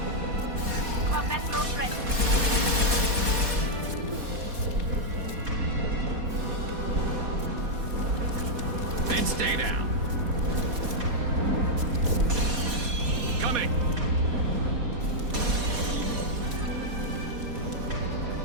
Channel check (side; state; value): left; late; 4.2 ms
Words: Combat drone ready. And stay down. Coming.